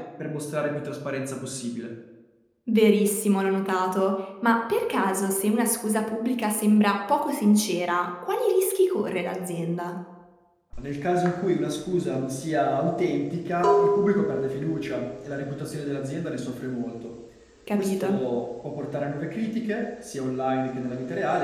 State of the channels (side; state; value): both; identical; correlation 1.00